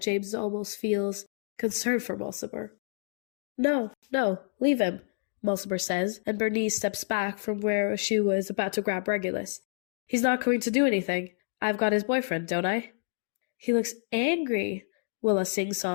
James almost feels concerned for Mulciber. No, leave him, Mulciber says, and Bernice steps back from where she was about to grab Regulus. He's not going to do anything. I've got his boyfriend, don't I? He looks angry. Willa sings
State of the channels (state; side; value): silent; right; digital silence